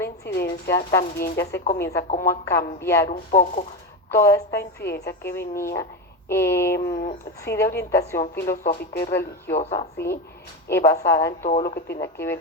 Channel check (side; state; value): both; normal; correlation 0.16